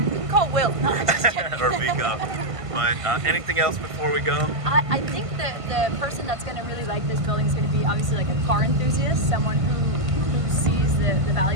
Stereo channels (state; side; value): late; left; 1.5 ms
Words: call Will. No, I'm just kidding. Or Vico. But anything else before we go? I think that the person that's going to really like this building is going to be obviously like a car enthusiast, someone who sees the